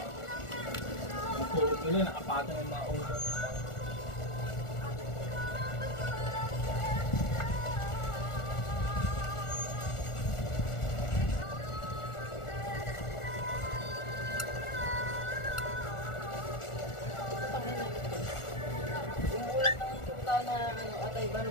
Matulog nila, nakapatong yung mga ulo. Yung ulam ng tuta na ano, atay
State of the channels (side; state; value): right; late; 1.4 ms